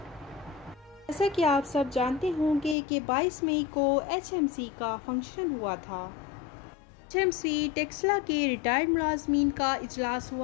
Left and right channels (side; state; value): right; drops out; at 2.8 s